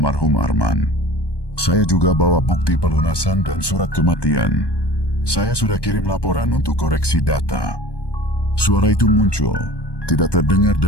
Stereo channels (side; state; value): right; late; 1.2 ms